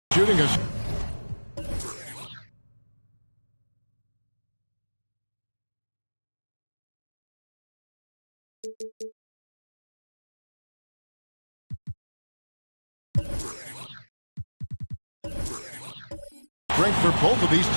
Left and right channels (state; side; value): inverted; both; correlation -1.00